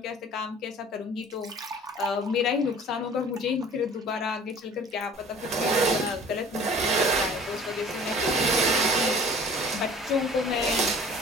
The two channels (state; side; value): normal; both; correlation 0.47